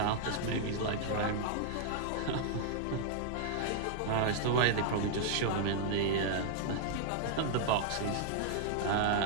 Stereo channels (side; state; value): both; different; correlation -0.01